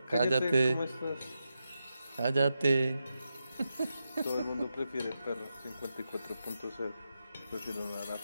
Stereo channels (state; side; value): inverted; both; correlation -0.88